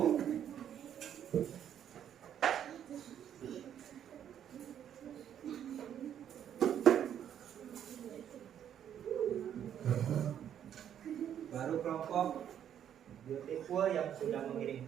Baru kelompok Beautiful yang sudah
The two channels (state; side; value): quieter; left; 9.7 dB